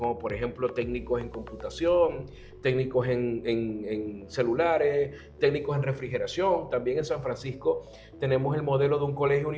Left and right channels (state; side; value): identical; both; correlation 1.00